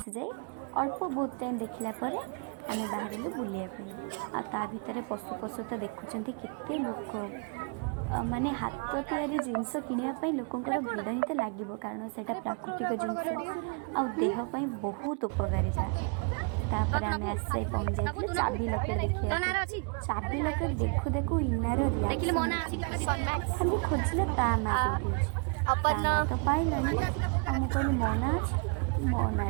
जाए अल्प बहुत टाइम देखला आम बाहर बुलाया ता भितर पशु पशु तो देखुं केते लोक माने हाथ तैयारी जिनस किणापी लोकंर भिड़ ही तो लगे कारण से प्राकृतिक जिनस आ देहपाई बहुत उपकारिता। चाबी लकेट देखिए चाबी लकेट देखु देखु इनार खाली खोजिले ता ना तो पाइला मुझे मना मना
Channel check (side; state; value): left; quieter; 36.6 dB